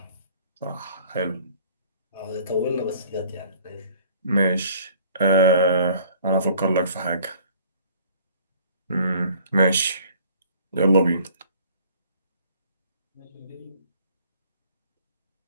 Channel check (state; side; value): inverted; both; correlation -0.54